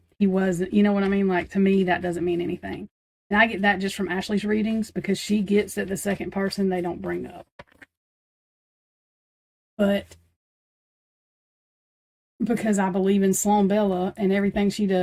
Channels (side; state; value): both; identical; correlation 1.00